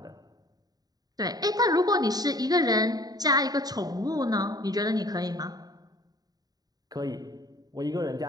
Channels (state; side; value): late; left; 0.18 ms